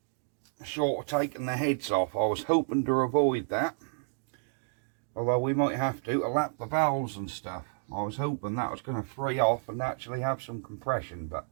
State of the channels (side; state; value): left; silent; digital silence